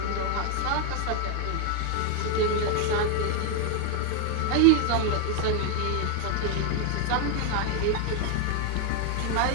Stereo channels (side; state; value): both; different; correlation 0.01